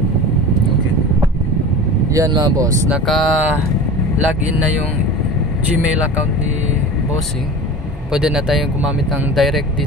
Okay. Yan mga boss, naka-login na yung Gmail account ni Bossing. Pwede na tayong gumamit ng direct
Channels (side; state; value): both; normal; correlation 0.34